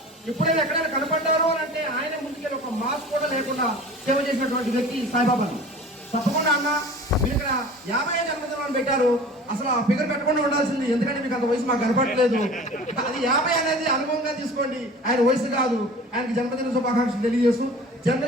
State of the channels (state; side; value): normal; both; correlation 0.41